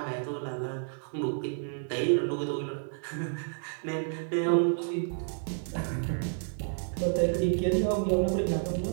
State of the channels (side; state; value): left; silent; digital silence